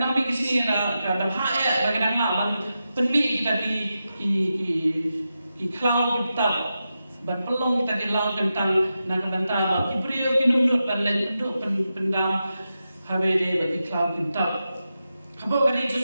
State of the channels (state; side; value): inverted; both; correlation -0.90